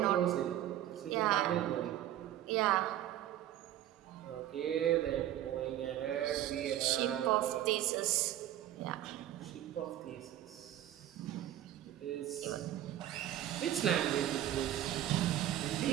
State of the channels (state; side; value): quieter; left; 12.4 dB